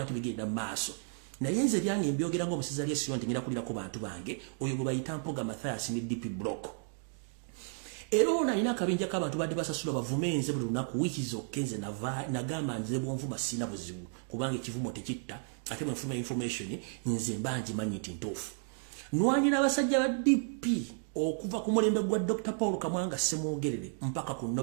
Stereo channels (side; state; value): left; silent; 56 dB below the other